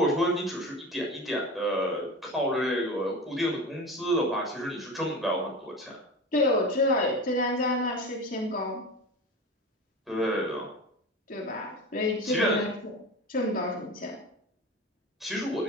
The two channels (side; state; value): both; normal; correlation 0.30